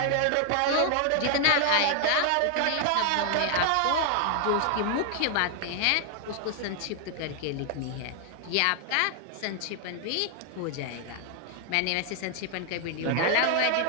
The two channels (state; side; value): different; both; correlation 0.00